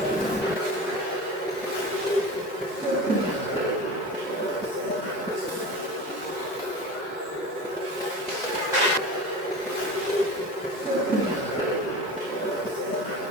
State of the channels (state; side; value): normal; both; correlation 0.31